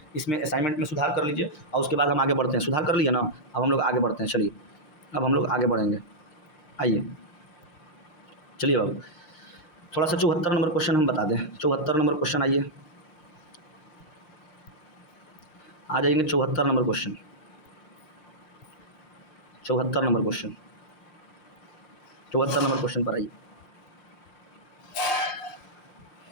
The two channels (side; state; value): right; late; 5.7 ms